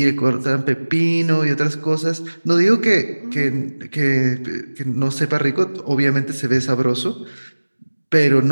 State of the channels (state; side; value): inverted; both; correlation -1.00